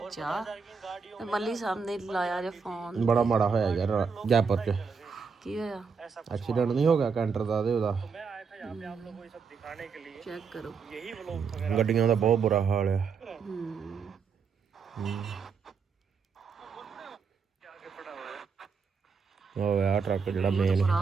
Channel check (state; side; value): quieter; left; 5.6 dB